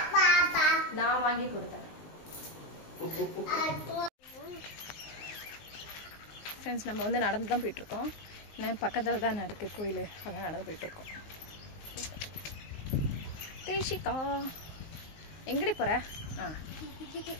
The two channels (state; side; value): late; right; 19 ms